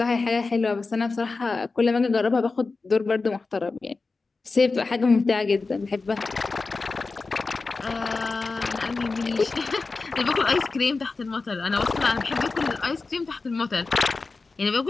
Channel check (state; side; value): quieter; right; 4.0 dB